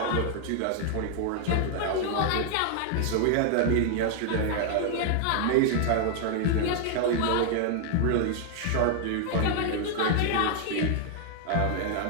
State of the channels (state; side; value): different; both; correlation 0.00